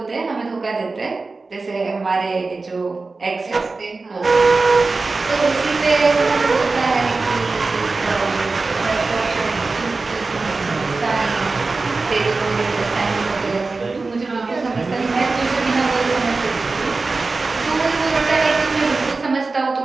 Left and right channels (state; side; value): quieter; left; 3.8 dB